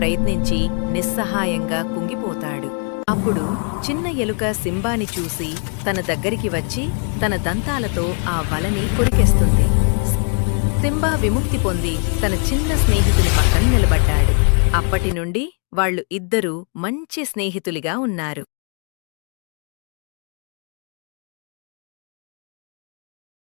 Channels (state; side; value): quieter; right; 39.7 dB